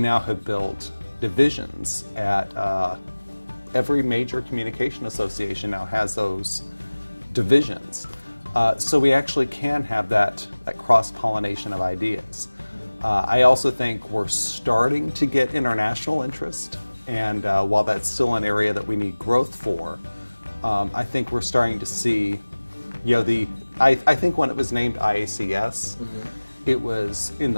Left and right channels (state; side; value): inverted; both; correlation -1.00